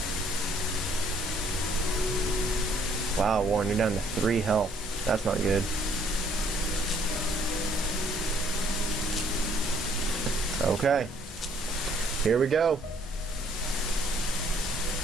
Wow, Warren, you're down to 3 health. That's not good. Okay. Here we go.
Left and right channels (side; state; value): both; normal; correlation 0.64